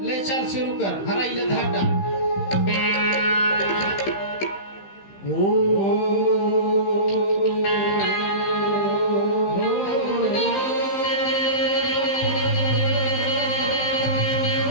ले चल शुरू कर, हरा इले धाटा।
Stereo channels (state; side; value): late; right; 15 ms